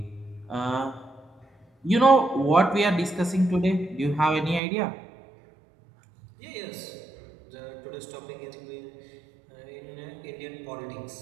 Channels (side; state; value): left; drops out; at 4.6 s